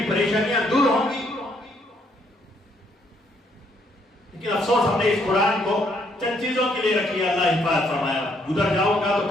پریشانیاں دور ہوں گی؟ لیکن افسوس ہم نے اس قرآن کو چند چیزوں کے لیے رکھی ہے، اللہ حفاظت فرمایا۔ گزر جاؤں گا تو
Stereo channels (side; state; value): both; normal; correlation 0.70